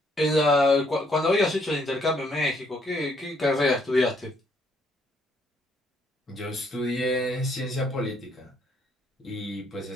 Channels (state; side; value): normal; both; correlation 0.69